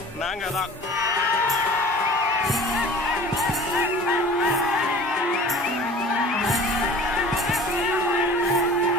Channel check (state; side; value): normal; both; correlation 0.43